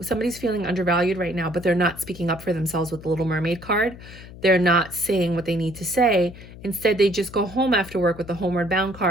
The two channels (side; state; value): left; noise; hum, 16 dB below the sound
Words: somebody's feeling undervalued right now, but they're not speaking up for themselves with the Little Mermaid card. They're not saying what they need to say. Instead, they just go home after work with the Homeward Bound